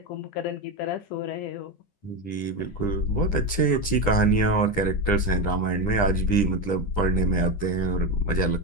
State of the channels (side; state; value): right; late; 10 ms